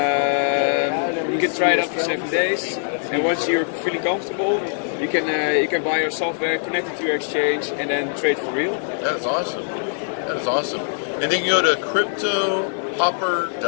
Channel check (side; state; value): right; silent; digital silence